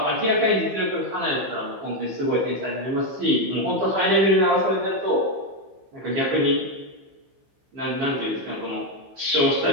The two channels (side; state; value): left; late; 15 ms